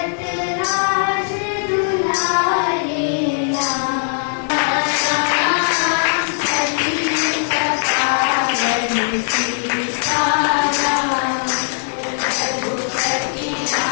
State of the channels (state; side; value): silent; right; 67 dB below the other